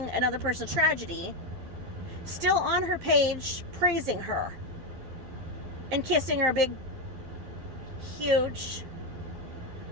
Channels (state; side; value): late; left; 12 ms